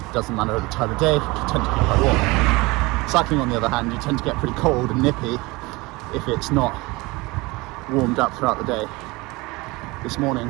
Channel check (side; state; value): left; quieter; 23.2 dB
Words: doesn't matter the time of day, you tend to get quite warm. Cycling on the other hand, you tend to get pretty cold and nippy if it's not warmed up throughout the day. This morning